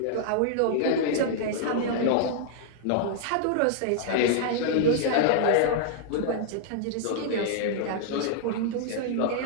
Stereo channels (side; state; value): both; different; correlation -0.01